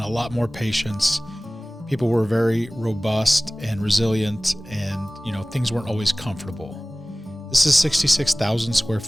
a lot more patience. People were very robust and resilient, and things weren't always comfortable. This is 66,000 square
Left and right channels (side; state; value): both; normal; correlation 0.98